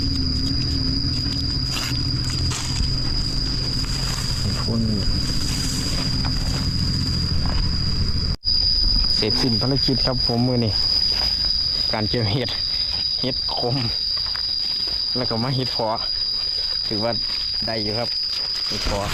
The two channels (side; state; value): both; identical; correlation 1.00